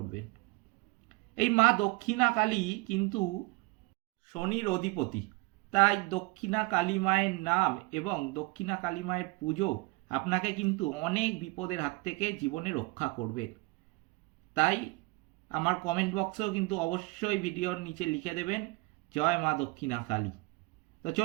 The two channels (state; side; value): quieter; left; 25.3 dB